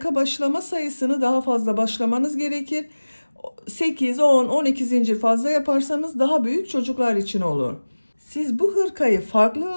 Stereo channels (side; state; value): both; inverted; correlation -1.00